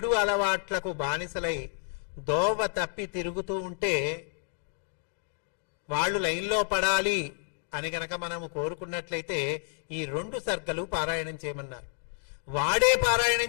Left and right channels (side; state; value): right; silent; digital silence